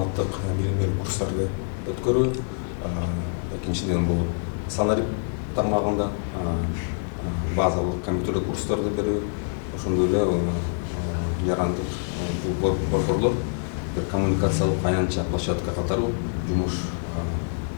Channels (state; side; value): silent; right; digital silence